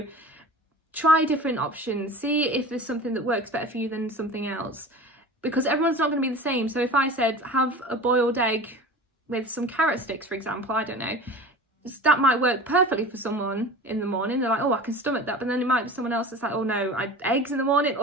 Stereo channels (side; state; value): both; normal; correlation 0.36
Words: try different options. See if there's something that works better for you than something else. Because everyone's not going to be the same. So if I said have a boiled egg with some carrot sticks, for example, I don't know, that might work perfectly for someone in the morning. They're like, oh, I can stomach that. But then it might be someone else that's like, oh no, eggs in the morning,